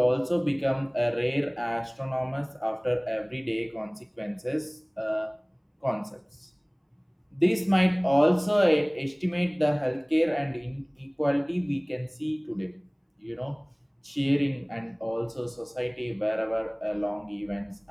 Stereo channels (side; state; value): both; identical; correlation 1.00